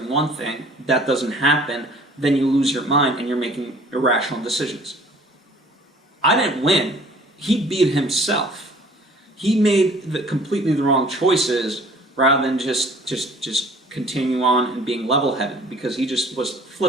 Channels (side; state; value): both; normal; correlation 0.52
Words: one thing, that doesn't happen, then you lose your mind and you're making irrational decisions. I didn't win. He beat himself. He made completely the wrong choices rather than just continue on and being level-headed because he just was